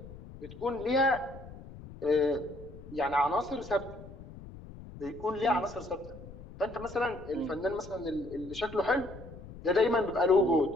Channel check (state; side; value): noise; left; rumble, 15 dB below the sound